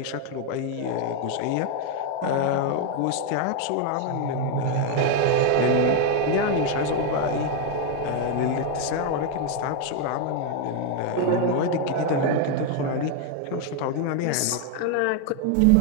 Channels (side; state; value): both; different; correlation 0.01